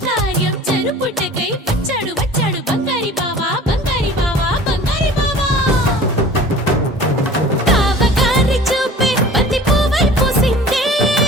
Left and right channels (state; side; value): normal; both; correlation 0.44